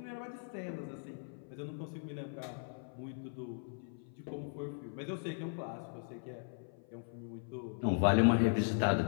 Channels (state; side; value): silent; right; 52 dB below the other